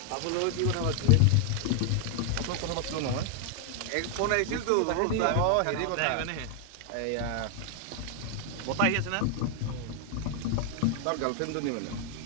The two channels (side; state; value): both; different; correlation 0.00